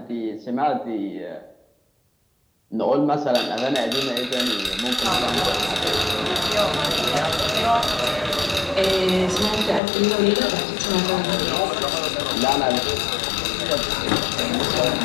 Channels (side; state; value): right; drops out; at 9.8 s